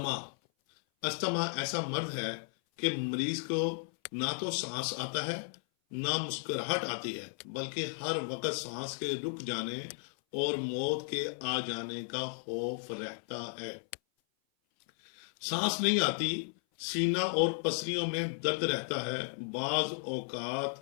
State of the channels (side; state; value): right; silent; 55 dB below the other